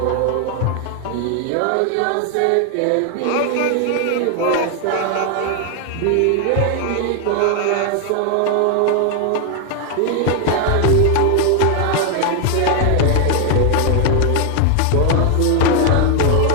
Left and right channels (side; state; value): both; different; correlation 0.00